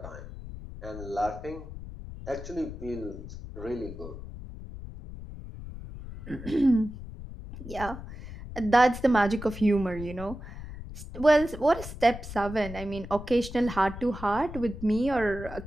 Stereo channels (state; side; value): noise; left; rumble, 12 dB below the sound